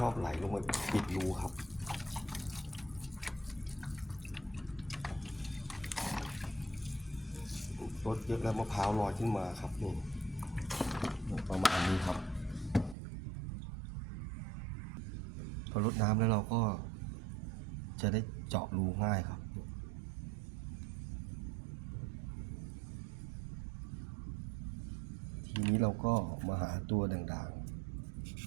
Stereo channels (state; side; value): drops out; left; at 13.0 s